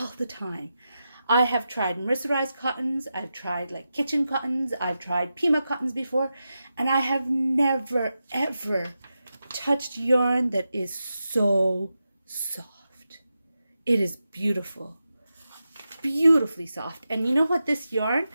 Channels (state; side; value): inverted; both; correlation -0.90